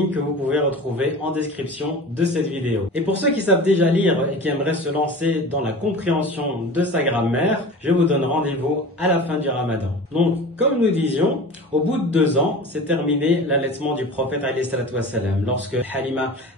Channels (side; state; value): both; normal; correlation 0.36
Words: que vous pouvez retrouver en description de cette vidéo. Et pour ceux qui savent déjà lire et qui aimeraient se lancer dans la compréhension de sa grammaire, je vous donne rendez-vous à la fin du Ramadan. Donc, comme nous disions, au bout de 2 ans, c'est terminé l'allaitement du prophète alayhi salatu wassalam. Lorsque Halima